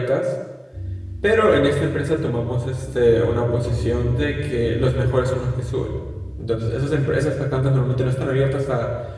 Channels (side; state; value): both; identical; correlation 1.00